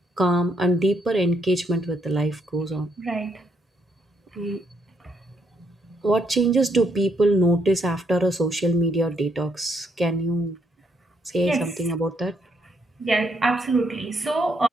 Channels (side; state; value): both; normal; correlation 0.74